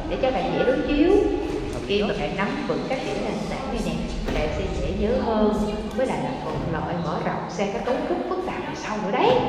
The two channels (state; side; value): identical; both; correlation 1.00